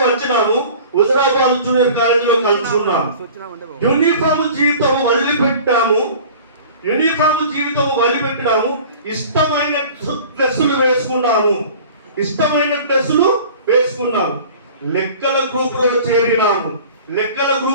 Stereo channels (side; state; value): both; inverted; correlation -0.44